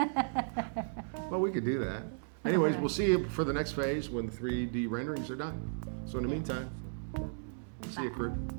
Well, we could do that. Anyways, we'll see you for the next phase when the 3D renderings are done. So in the meantime, see you, crew.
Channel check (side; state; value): left; silent; digital silence